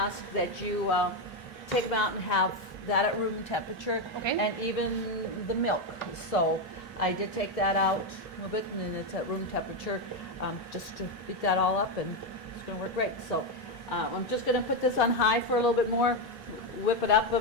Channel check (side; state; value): both; normal; correlation 0.07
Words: that you take them out and have that at room temperature. Okay. And even the milk. So I did take that out a little bit, and then it's at room temperature, just to beat that all up, and it's going to work great. So I'm just going to put this on high for a little bit more, whip it up a